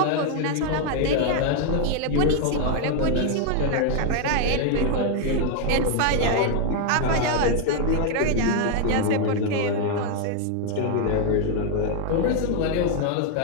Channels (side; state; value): both; different; correlation 0.00